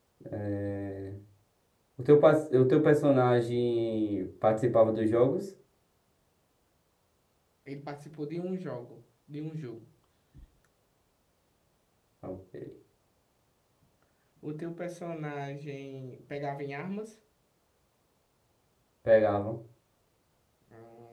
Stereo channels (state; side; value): identical; both; correlation 1.00